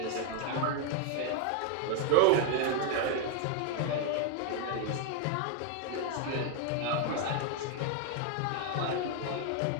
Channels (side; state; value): both; different; correlation 0.00